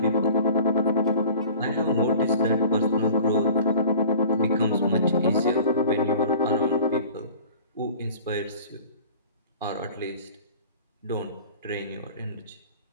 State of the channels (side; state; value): both; inverted; correlation -0.44